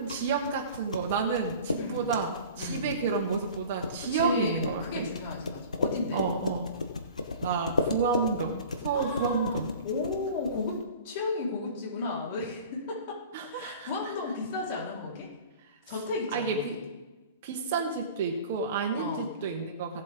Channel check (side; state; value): both; inverted; correlation -0.42